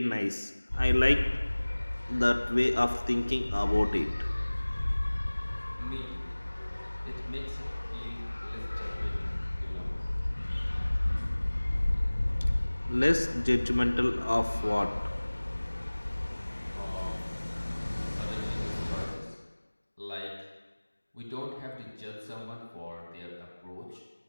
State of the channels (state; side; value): inverted; both; correlation -1.00